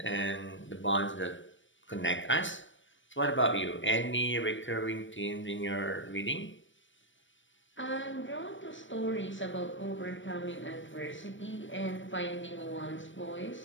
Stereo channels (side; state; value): right; late; 0.56 ms